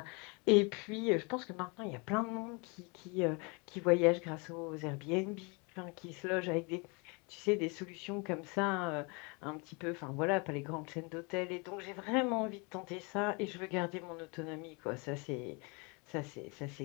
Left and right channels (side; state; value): right; quieter; 30.8 dB